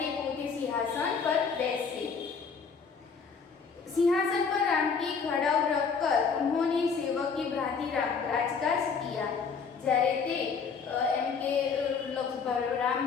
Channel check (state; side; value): quieter; right; 5.6 dB